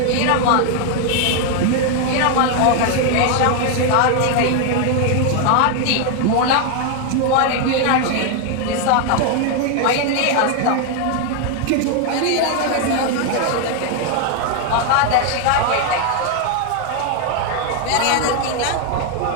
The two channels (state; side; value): different; both; correlation 0.01